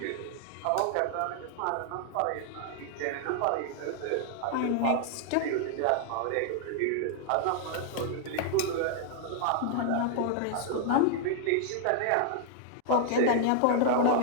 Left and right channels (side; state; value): both; different; correlation 0.00